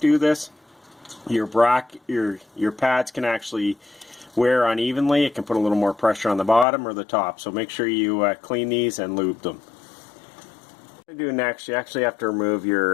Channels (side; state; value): right; drops out; at 6.7 s